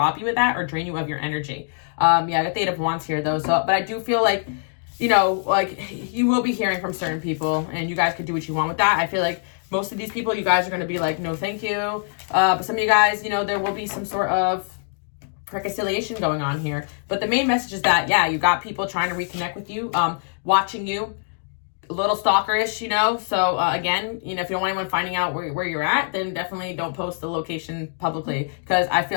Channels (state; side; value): silent; right; digital silence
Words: you of that or drain you of your energy. Yeah, I got the Eight of Wands here though. So, but I do feel like, you know, like you will be hearing from certain people, and you guys could do what you want with that. I feel like most of these people, you guys are going to be like, no, thank you. But some of you guys, you know, there will be some sort of reconciliation going on here. But the main message is that, yeah, you got people trying to reconnect with you, watching you, a little stalkerish, you know. So again, you know, if you don't want anyone finding out where you're at, then definitely don't post the location publicly, because I